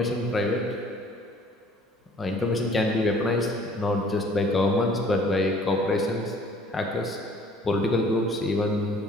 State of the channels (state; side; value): normal; both; correlation 0.55